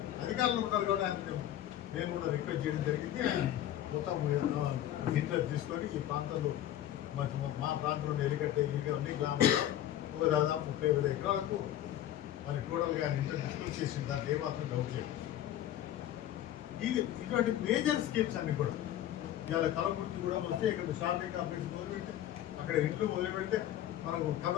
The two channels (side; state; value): right; quieter; 12.2 dB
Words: అధికారులు ఉన్నారు కూడా ఆయన నేను కూడా రిక్వెస్ట్ చేయడం జరిగింది. ఆయన మొత్తం ఇంటర్ తీసుకొని ఈ ప్రాంతంలో మా ప్రాంతంలో ఎలికట్టే అన్ని గ్రామాలు ఒక దాదాపు 30,000 ఎకరాలకు మరి టోటల్గా ఆయన ఇంటర్ డిస్కస్ చేసిన దాంట్లో ఏమాత్రం డౌట్ లేదు. ఇటువంటి మేజర్ స్కీమ్స్ అన్ని కూడా ఇవాళ కలవకుర్తి కూడా వస్తే ఇక్కడ షాపింగ్ కాంప్లెక్స్ మొదలుపెడితే అక్కడ ఇండ్లు మొదలు పెడితే మనకు